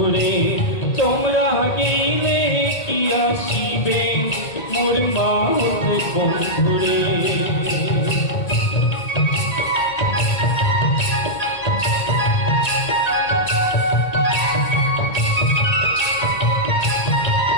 তোমরা গেলে কি আসিবে মোর মাহুত বন্ধুরে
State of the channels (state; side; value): late; right; 1.8 ms